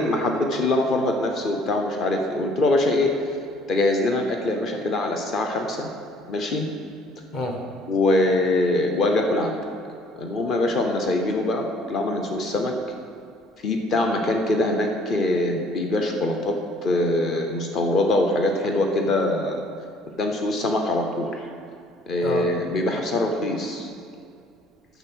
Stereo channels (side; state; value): both; normal; correlation 0.59